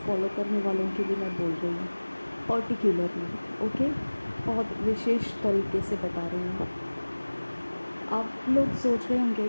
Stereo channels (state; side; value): inverted; both; correlation -1.00